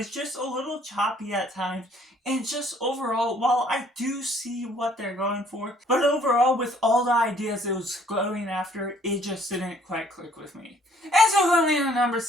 just a little choppy at times. And just overall, while I do see what they're going for, but overall with all the ideas it was going after, it just didn't quite click with me. And so going in at number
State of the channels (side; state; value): both; normal; correlation 0.61